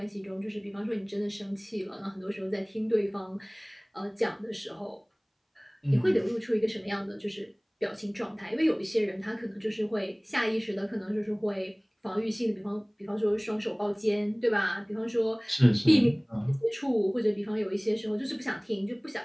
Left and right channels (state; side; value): identical; both; correlation 1.00